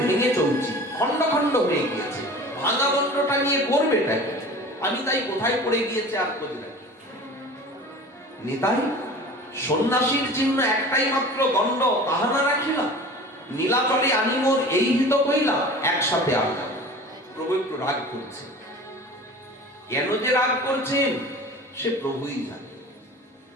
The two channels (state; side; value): normal; both; correlation 0.40